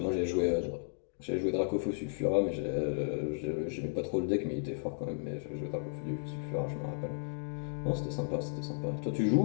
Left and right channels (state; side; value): silent; right; digital silence